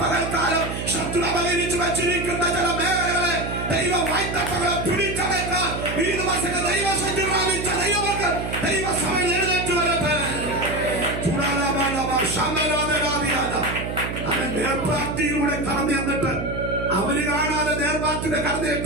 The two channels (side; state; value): right; noise; hum, 5 dB below the sound